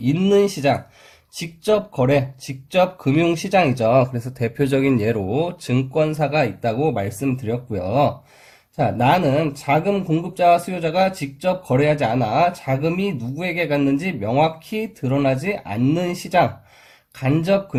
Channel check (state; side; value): identical; both; correlation 1.00